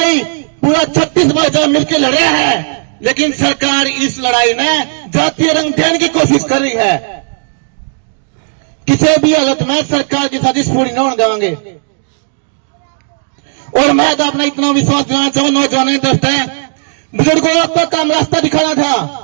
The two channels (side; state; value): left; silent; digital silence